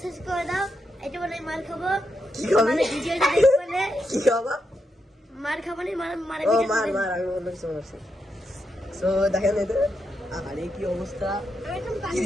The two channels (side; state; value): both; normal; correlation 0.84